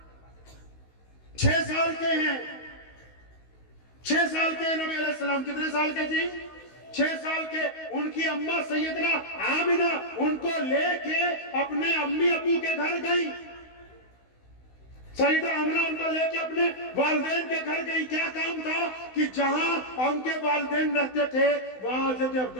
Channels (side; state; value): right; late; 16 ms